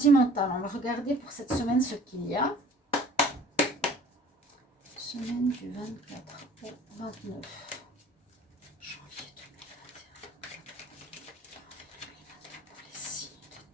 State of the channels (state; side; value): normal; both; correlation 0.49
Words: on va regarder pour cette semaine ce qu'il y a. Semaine du 24 au 29.